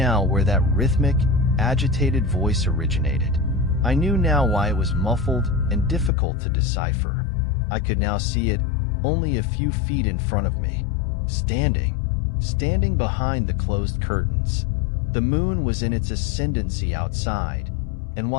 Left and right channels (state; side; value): drops out; right; at 6.1 s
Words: where that rhythmic, agitated voice originated. I knew now why it was muffled and difficult to decipher. I could now see it only a few feet in front of me, standing behind the closed curtains. The moon was in its ascendancy outside, and